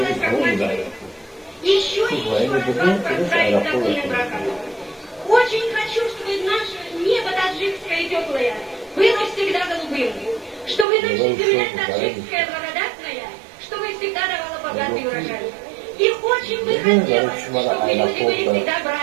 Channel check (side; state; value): left; drops out; at 10.9 s